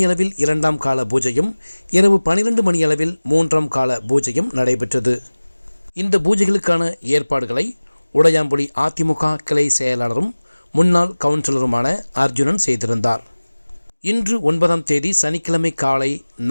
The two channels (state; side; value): inverted; both; correlation -1.00